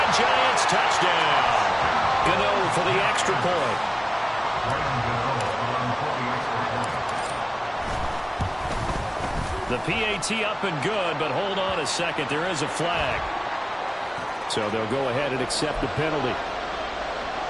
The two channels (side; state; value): both; identical; correlation 1.00